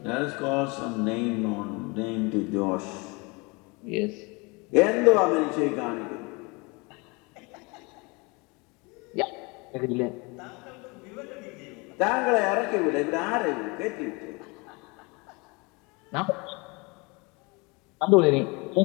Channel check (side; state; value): right; quieter; 27.7 dB